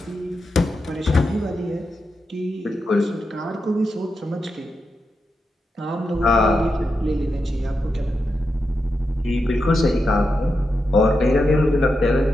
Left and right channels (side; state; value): both; normal; correlation 0.87